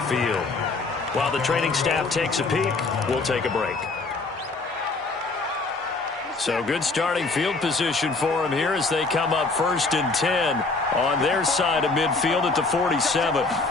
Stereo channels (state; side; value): quieter; right; 3.7 dB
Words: field. While the training staff takes a peek, we'll take a break. So good starting field position for him here as they come up 1st and 10 on their side of midfield at the 47.